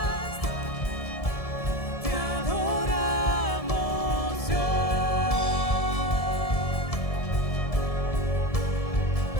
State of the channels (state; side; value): late; right; 1.7 ms